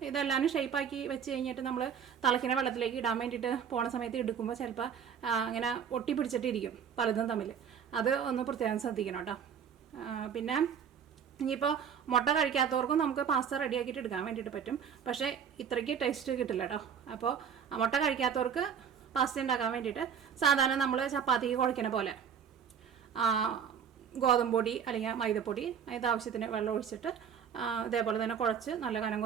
ഇതെല്ലാം ഷേപ്പാക്കി വെച്ച് കഴിഞ്ഞിട്ട് നമ്മൾ തിളയ്ക്കുന്ന വെള്ളത്തിലേക്ക് ഇടാൻ വേണ്ടിയിട്ട് പോണ സമയത്ത് എടുക്കുമ്പോൾ ചിലപ്പോൾ അങ്ങനെ ഒട്ടി പിടിച്ചിട്ടിരിക്കും പലതും തമ്മിൽ. അത് ഒന്ന് പ്രത്യേകം ശ്രദ്ധിക്കണം കേട്ടോ. പിന്നെ ഇനിയിപ്പോൾ മുട്ട കഴിക്കാത്തവർക്കും നമുക്ക് പാസ്ത റെഡിയാക്കിയിട്ട് എടുക്കാൻ വേണ്ടിയിട്ട് പറ്റും. പക്ഷേ ഇത്രയ്ക്ക് ടേസ്റ്റ് കിട്ടില്ല കേട്ടോ. അപ്പോൾ മുട്ട കഴിക്കാത്തവർക്ക് പാസ്ത ഉണ്ടാക്കാൻ വേണ്ടിയിട്ട് സാധാരണ നമ്മൾ ചപ്പാത്തിക്ക് കുഴയ്ക്കണ പോലെ ഗോതമ്പ് പൊടി അല്ലെങ്കിൽ മൈദപ്പൊടി അതിൻ്റെ ആവശ്യത്തിന് വെള്ളം ഒഴിച്ചിട്ട് ഇതേപോലെ തന്നെ കുഴച്ച് നല്ല കനം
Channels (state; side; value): quieter; left; 7.6 dB